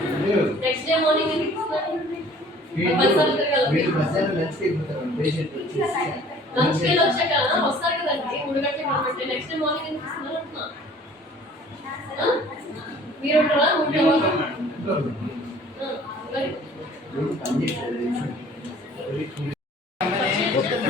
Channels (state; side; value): normal; both; correlation 0.51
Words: next day morning ఎందుకు ఇస్తున్నారు లంచ్ కి వచ్చాక వస్తారు కదండి 3 గంటలకు కాబట్టి నెక్స్ట్ డే మార్నింగ్ ఎందుకు ఇస్తున్నారు అంటున్నా మీరు ఉంటారా